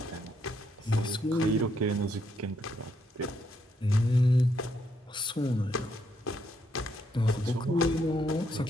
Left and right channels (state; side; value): normal; both; correlation 0.75